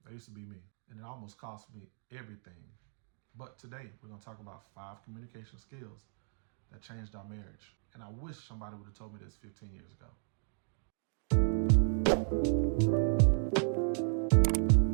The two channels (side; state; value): left; silent; digital silence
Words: that used to be me. And it almost cost me everything. But today we're gonna talk about 5 communication skills that changed our marriage. And I wish somebody would have told me this 15 years ago.